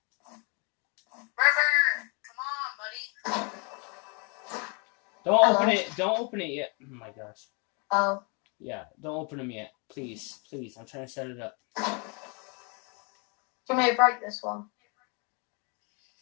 River, come on, buddy. Don't Hello? open it. Don't open it yet. Oh my gosh. Oh. Yeah, don't open them yet. Please. Please. I'm trying to set it up. You may break this one.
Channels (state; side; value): quieter; right; 33.9 dB